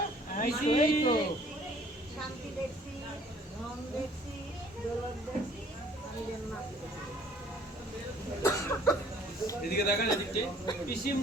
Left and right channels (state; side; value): normal; both; correlation 0.56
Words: পিসি শান্তি দেখছি, ধন দেখছি, দৌলত দেখছি। আমি যেন না এদিকে দেখা যাচ্ছে পিসি